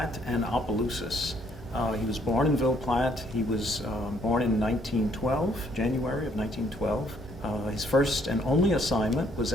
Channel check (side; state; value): both; normal; correlation 0.66